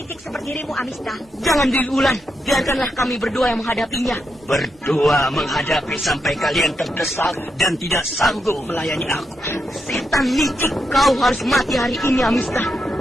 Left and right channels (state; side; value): normal; both; correlation 0.83